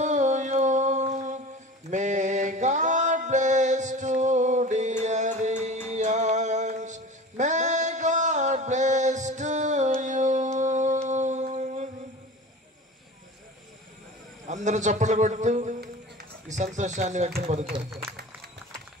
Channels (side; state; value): both; normal; correlation 0.36